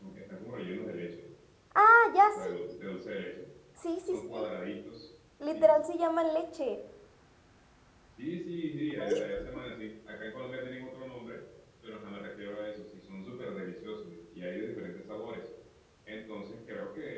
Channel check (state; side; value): identical; both; correlation 1.00